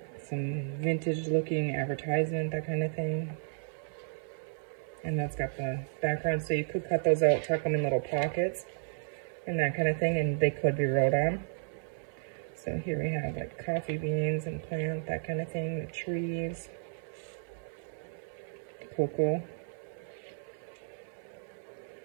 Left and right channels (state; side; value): silent; left; 56 dB below the other